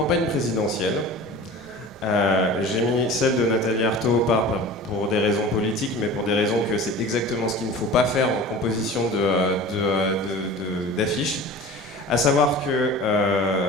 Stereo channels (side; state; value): both; normal; correlation 0.38